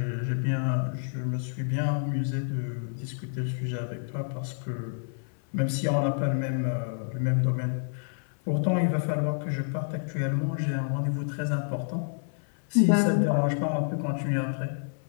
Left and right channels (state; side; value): silent; right; 56 dB below the other